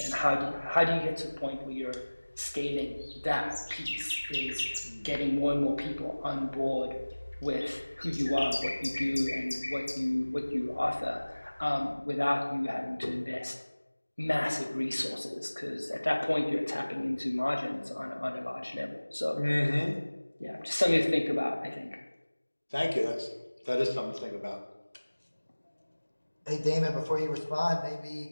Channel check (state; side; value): inverted; both; correlation -1.00